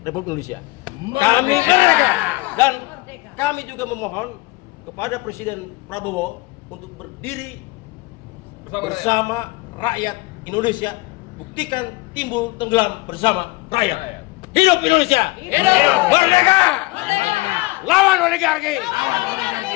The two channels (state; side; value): quieter; right; 22.8 dB